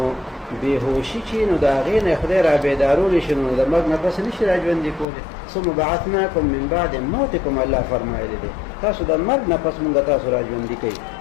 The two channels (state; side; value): drops out; right; at 5.1 s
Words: بېهوشي چې نو د هغې نه خدای را بیدارولی شي نو د مرګ نه پس نشي را ژوندي کولی ثم بعثناکم من بعد موتکم الله فرمایلی دی تاسو د مرګ نه پس مونږ تاسو را ژوندي کوي